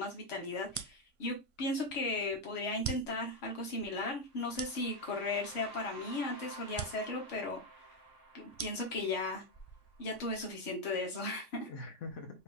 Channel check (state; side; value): late; right; 3.5 ms